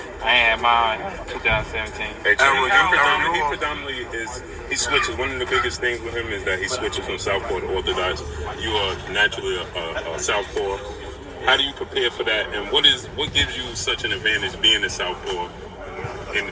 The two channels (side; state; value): both; identical; correlation 1.00